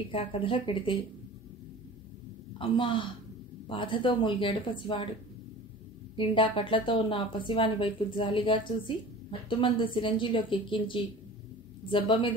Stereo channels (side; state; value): both; normal; correlation 0.40